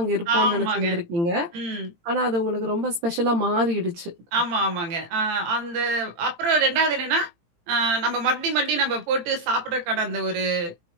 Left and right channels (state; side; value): late; left; 18 ms